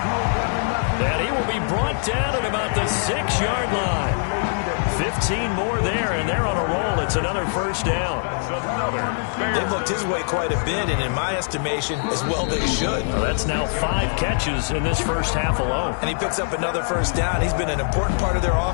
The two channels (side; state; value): right; silent; digital silence